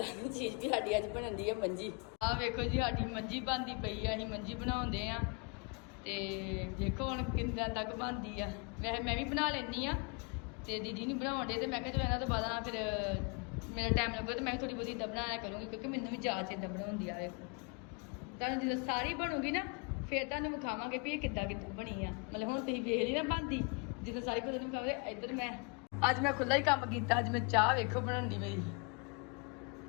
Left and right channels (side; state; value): right; quieter; 33.9 dB